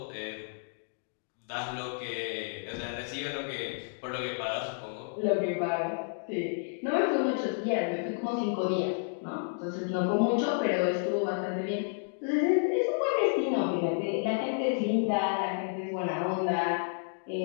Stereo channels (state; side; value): silent; right; digital silence